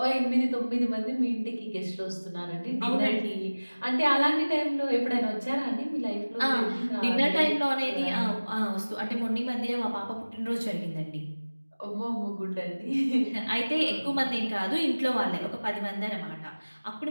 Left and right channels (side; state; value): both; inverted; correlation -1.00